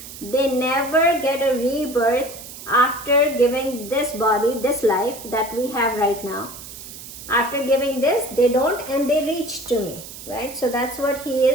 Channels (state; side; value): noise; right; hiss, 14 dB below the sound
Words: they never get a rebirth after giving this body, this life that we have right now. After giving this, they don't, and they reach to me, right? So that's what he